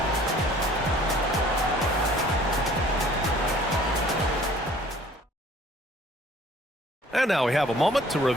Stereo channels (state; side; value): normal; both; correlation 0.54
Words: And now we have a moment to